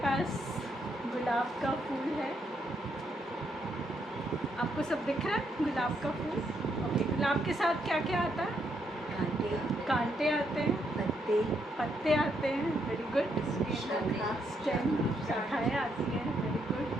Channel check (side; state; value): both; normal; correlation 0.76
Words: पास गुलाब का फूल है, आपको सब दिख रहा है गुलाब का फूल? ओके, गुलाब के साथ क्या क्या आता है? कांटे आते हैं, पत्ते आते हैं, वेरी गुड। स्टेम, शाखाएँ आती हैं, वेरी गुड।